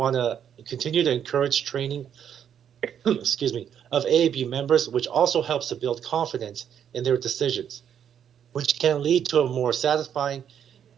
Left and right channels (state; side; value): quieter; left; 8.9 dB